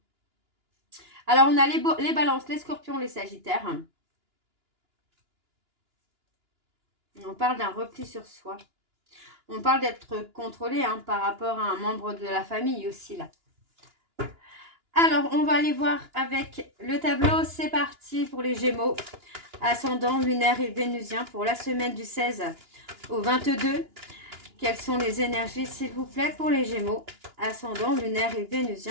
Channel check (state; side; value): late; left; 2.9 ms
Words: Alors, on a les balances, les scorpions, les sagittaires. On parle d'un repli sur soi. On parle d'être contrôlé hein, par rapport à un membre de la famille aussi, là. Alors, on va aller voir avec le tableau. C'est parti pour les Gémeaux. Ascendant, lunaire et vénusien pour la semaine du 16 au 22. Quelles sont les énergies, s'il vous plaît, pour les Gémeaux? Ascendant, lunaire et